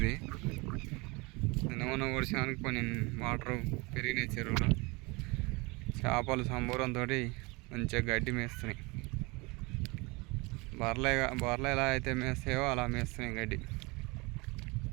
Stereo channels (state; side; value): quieter; left; 26.3 dB